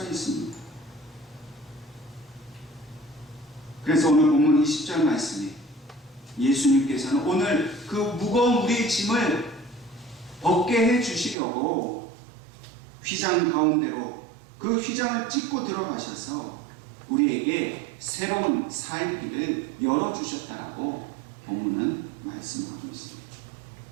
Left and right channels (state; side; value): drops out; left; at 11.4 s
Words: 있습니다. 그래서 오늘 본문 20절 말씀에 예수님께서는 오늘 그 무거운 우리의 짐을 벗게 해 주시려고 휘장 가운데로 그 휘장을 찢고 들어가셔서 우리에게 새로운 살 길을 열어주셨다라고 본문은 말씀하고 있습니다.